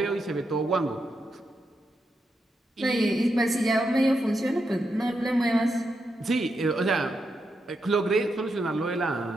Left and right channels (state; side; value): normal; both; correlation 0.84